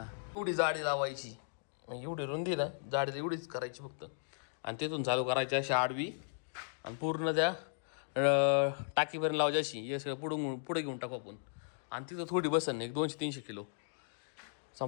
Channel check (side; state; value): right; silent; digital silence